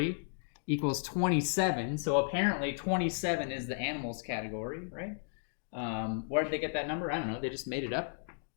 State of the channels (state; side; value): silent; right; digital silence